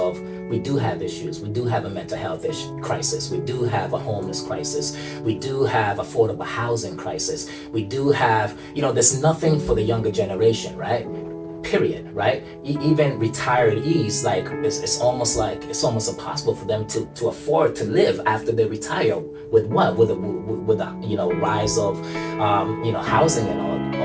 we do have issues. We do have a mental health crisis. We do have a homeless crisis. We do have affordable housing crisis. We do have, there's nothing for the younger generation, right? Period, right? Even retirees, like it's almost impossible for them to afford to live after they retire. With what? With a rise of housing and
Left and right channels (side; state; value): both; identical; correlation 1.00